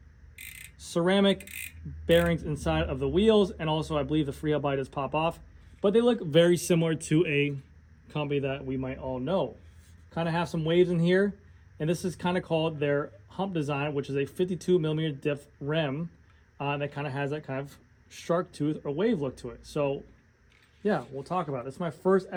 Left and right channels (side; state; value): both; identical; correlation 1.00